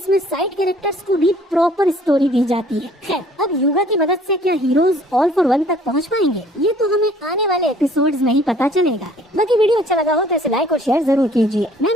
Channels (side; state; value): both; normal; correlation 0.56